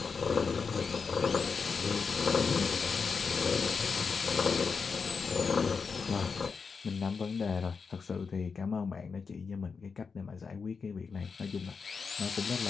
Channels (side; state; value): right; quieter; 5.3 dB